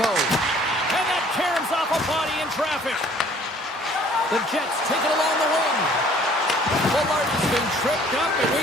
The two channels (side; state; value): both; normal; correlation 0.56